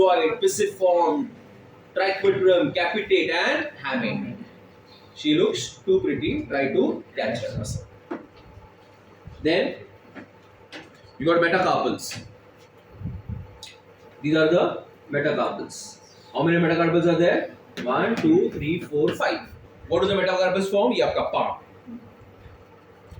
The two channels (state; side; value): identical; both; correlation 1.00